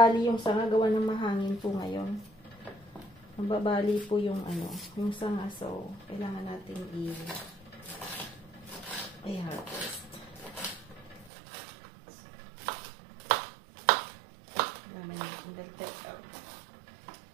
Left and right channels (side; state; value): left; drops out; at 11.3 s